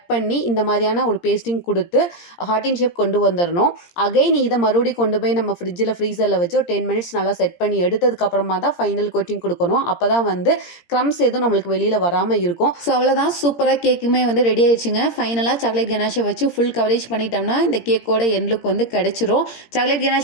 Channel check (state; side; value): late; right; 17 ms